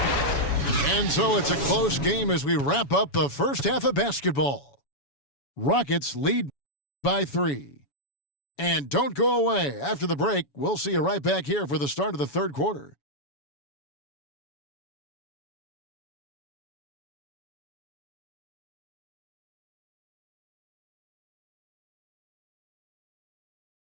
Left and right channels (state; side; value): late; right; 7.1 ms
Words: And so it's a close game as we wrap up the first half of basketball. Rockets lead by 3. And don't go away. After the break, we'll see you right back here for the start of the third quarter.